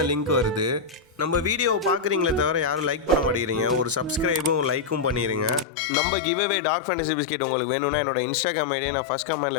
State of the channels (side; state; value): right; drops out; at 5.7 s